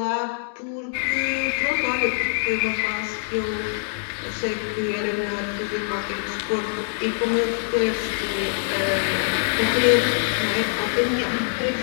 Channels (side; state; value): right; silent; digital silence